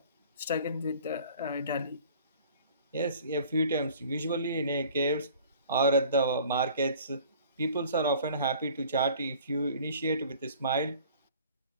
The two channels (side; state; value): both; inverted; correlation -0.49